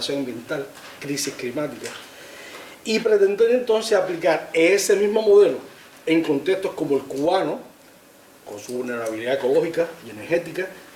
ambiental, crisis climática. Y pretender entonces aplicar ese mismo modelo en contextos como el cubano, con su vulnerabilidad ecológica y energética,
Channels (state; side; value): identical; both; correlation 1.00